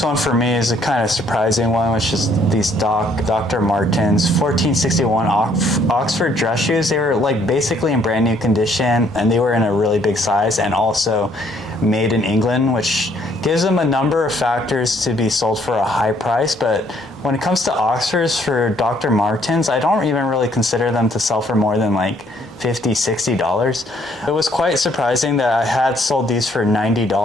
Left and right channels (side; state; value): both; normal; correlation 0.65